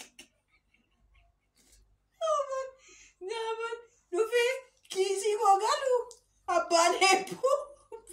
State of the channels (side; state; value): both; identical; correlation 1.00